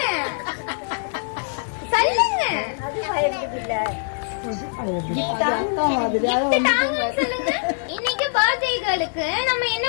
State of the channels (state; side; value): silent; right; 63 dB below the other